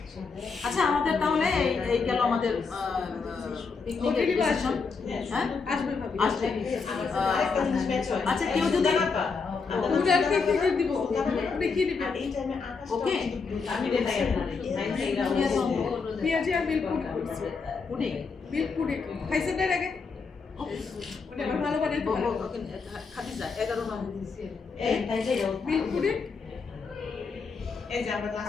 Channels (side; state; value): right; quieter; 4.9 dB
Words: আচ্ছা আমাদের তাহলে এই গেল আমাদের পিকনিকের ডিসিশন হ্যাঁ আসবে ভাবি আসবে আরেকটা জিনিস ম্যাচ হয় আচ্ছা কেউ যদি ওটা আর কি দিব ওটা কি দিবে এই টাইমে আকাশ ওকে আমি দেখাই আপনাদের পেঁয়াজি আর মিল্ক পুডিং করছে পুডিং মিল্ক পুডিং খাইছেন এর আগে ওটা আবার ভালো বানাইতে পারে খাদিজা 11 নম্বর এই তাই যাই মিল্ক পুডিং এই যে আমরা